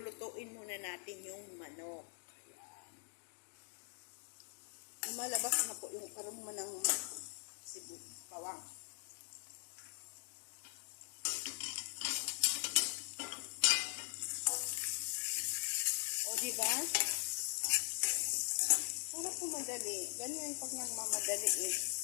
muna natin yung manok. Ayan. Lumalabas na po yung aroma ng bawang. O diba? Para po madali. Ganyan pag nagmamadali eh.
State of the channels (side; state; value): right; silent; digital silence